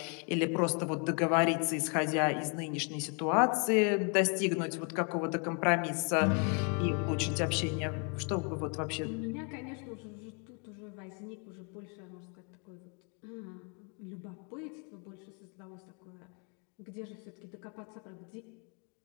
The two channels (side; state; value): right; quieter; 37.1 dB